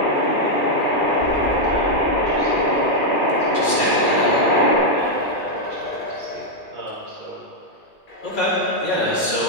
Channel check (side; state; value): right; late; 2.4 ms